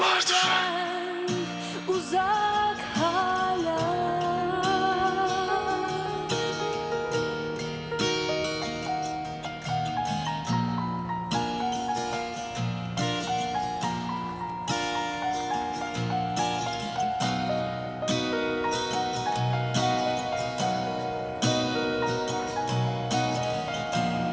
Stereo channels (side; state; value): both; identical; correlation 1.00